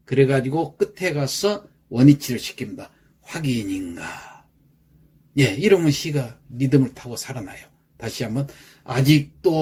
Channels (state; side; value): identical; both; correlation 1.00